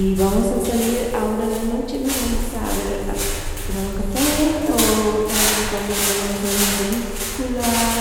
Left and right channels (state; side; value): identical; both; correlation 1.00